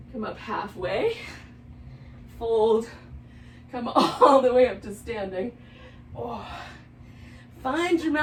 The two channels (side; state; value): both; identical; correlation 1.00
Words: Come up halfway, fold, come all the way up to standing. Oh. Find your